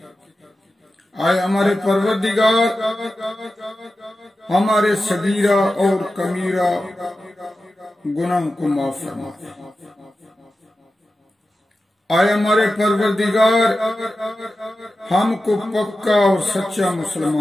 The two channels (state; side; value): normal; both; correlation 0.93